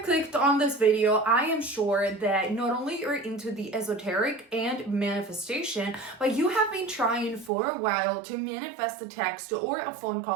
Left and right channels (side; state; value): left; drops out; at 7.5 s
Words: clicked on this video, I am sure that not only you're into the esoteric and manifestation, but you have been trying for a while to manifest a text or a phone